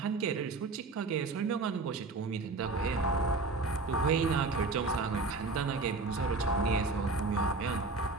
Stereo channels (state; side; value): quieter; left; 3.8 dB